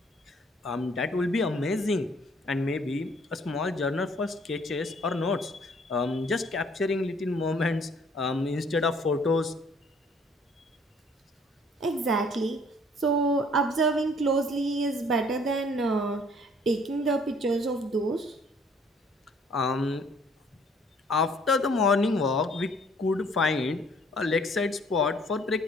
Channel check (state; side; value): normal; both; correlation 0.59